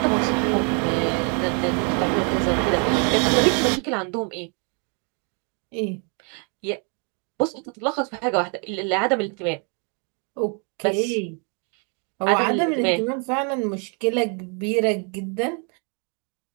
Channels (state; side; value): quieter; left; 37.8 dB